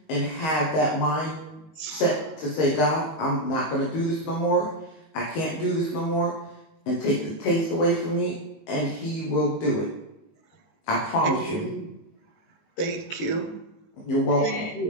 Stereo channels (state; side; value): late; right; 19 ms